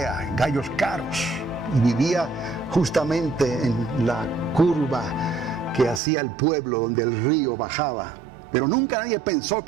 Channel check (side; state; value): left; drops out; at 6.0 s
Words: gallos caros, y vivía justamente en la curva que hacía el pueblo donde el río bajaba. Pero nunca nadie pensó